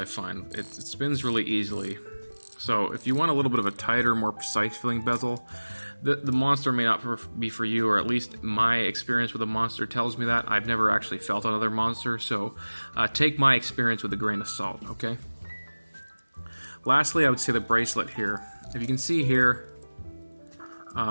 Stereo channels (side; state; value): both; inverted; correlation -1.00